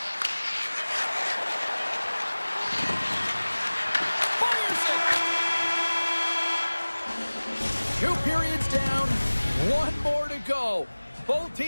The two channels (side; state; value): both; inverted; correlation -1.00